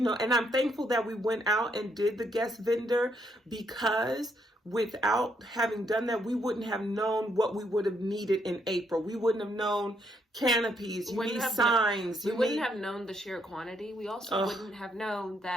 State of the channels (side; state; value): both; normal; correlation 0.74